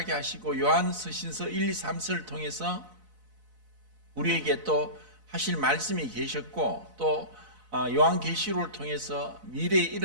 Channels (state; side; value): late; left; 4.0 ms